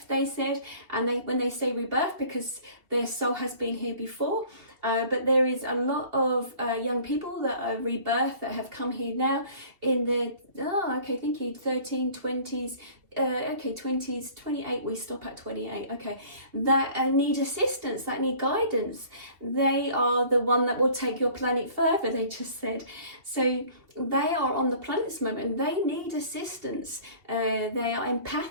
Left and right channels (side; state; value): left; late; 2.7 ms